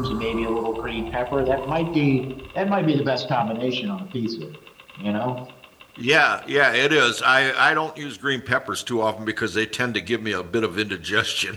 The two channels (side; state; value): both; identical; correlation 1.00